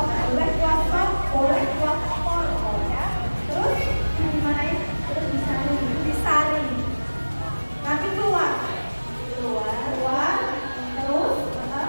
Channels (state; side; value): inverted; both; correlation -1.00